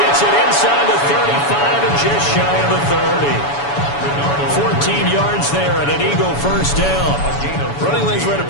gets it inside the 35 and just shy of the 30. 14 yards there and an Eagle first down. Running lanes were at a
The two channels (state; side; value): late; right; 7.1 ms